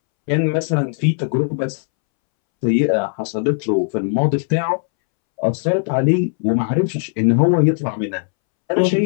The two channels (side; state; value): right; silent; 66 dB below the other